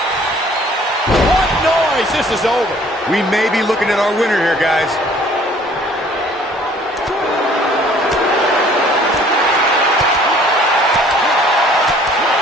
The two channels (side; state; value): both; normal; correlation 0.55